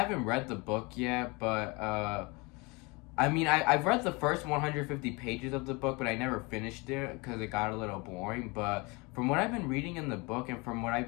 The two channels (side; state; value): right; quieter; 27.0 dB